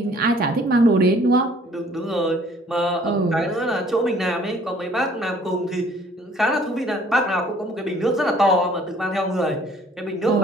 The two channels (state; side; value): normal; both; correlation 0.57